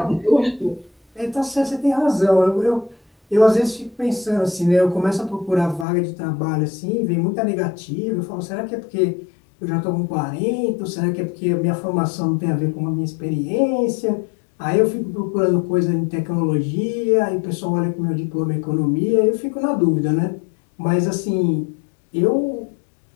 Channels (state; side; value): drops out; right; at 5.9 s